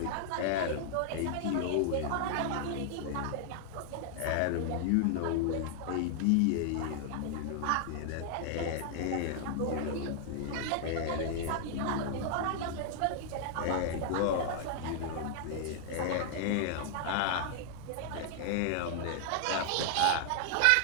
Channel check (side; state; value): both; different; correlation 0.00